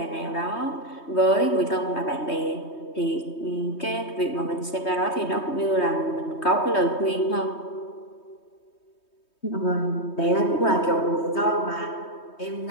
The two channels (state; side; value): late; right; 3.2 ms